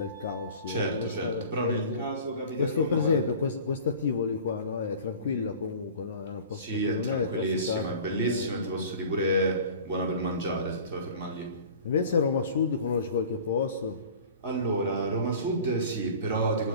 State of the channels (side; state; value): both; inverted; correlation -0.42